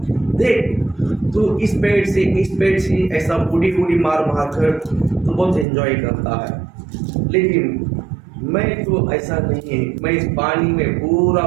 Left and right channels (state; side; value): drops out; left; at 5.7 s